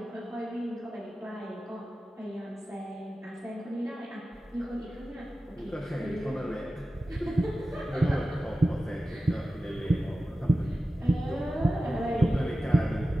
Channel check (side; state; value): both; normal; correlation 0.94